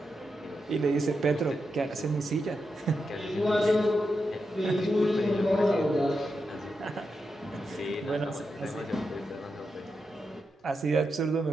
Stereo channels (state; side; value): normal; both; correlation 0.87